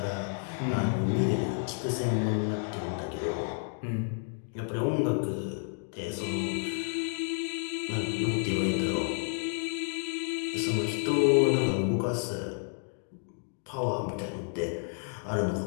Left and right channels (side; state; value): right; silent; 57 dB below the other